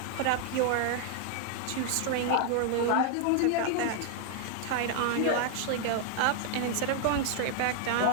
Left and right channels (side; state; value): both; different; correlation 0.00